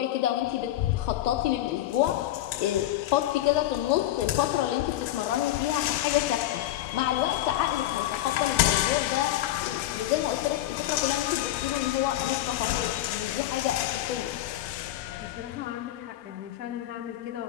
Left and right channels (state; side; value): quieter; right; 14.2 dB